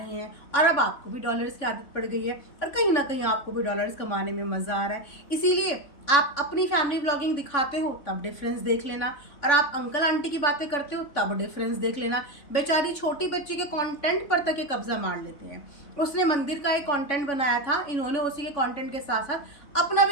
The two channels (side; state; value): right; late; 3.5 ms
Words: हैं और अब आपको भी डॉलर्स की आदत पड़ गई है और कहीं ना कहीं आपको भी डॉलर्स कमाने में मज़ा आ रहा है। इसीलिए आप अपनी फैमिली व्लॉगिंग दिखाते हो तब डिफरेंस देख लेना, और आप अंकल आंटी की बातें करते हो तब डिफरेंस देख लेना। बेचारी छोटी बच्ची के कंटेंट पर तक ये कब्जा मार लेते हैं। उसने मंदिर का एक कंटेंट बनाया था, इन्होंने उसी के कंटेंट के साथ साथ अपना